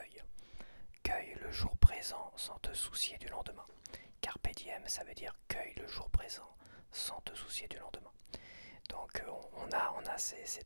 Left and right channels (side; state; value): both; inverted; correlation -1.00